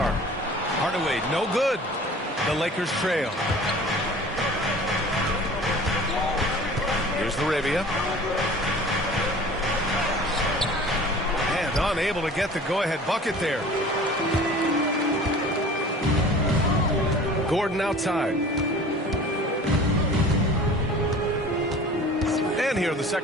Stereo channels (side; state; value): both; normal; correlation 0.44